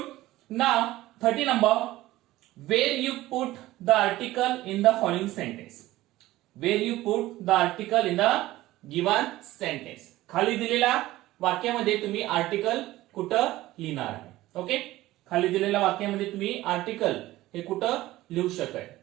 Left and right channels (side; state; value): left; quieter; 16.7 dB